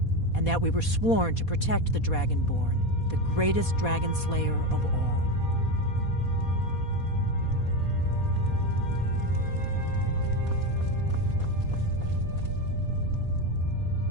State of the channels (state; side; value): late; right; 4.2 ms